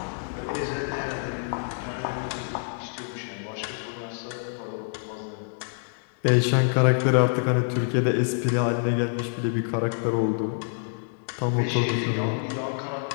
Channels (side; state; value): right; silent; 60 dB below the other